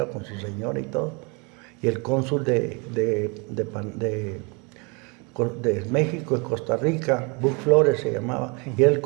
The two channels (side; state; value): left; quieter; 31.5 dB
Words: con su señora y todo. Y el cónsul de México, de Costa Rica, Buck Flores se llamaba, y era el